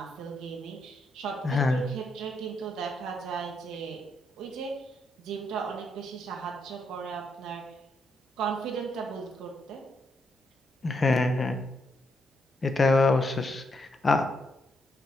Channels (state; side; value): normal; both; correlation 0.78